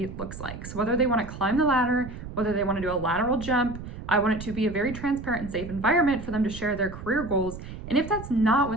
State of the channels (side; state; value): right; noise; rumble, 11 dB below the sound